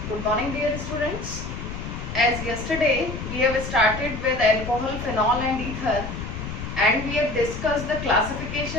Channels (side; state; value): left; noise; rumble, 7 dB below the sound